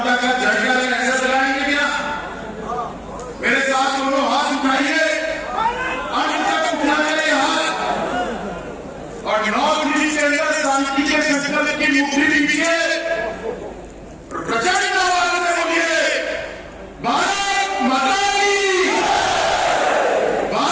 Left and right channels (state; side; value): identical; both; correlation 1.00